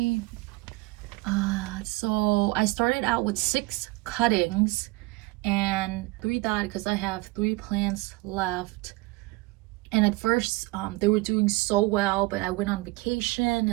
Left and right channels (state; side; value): quieter; left; 22.1 dB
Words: So I started out with 6 cuttings and 3 died because I have 3 plants left. And at first they were doing so well, but I went on vacation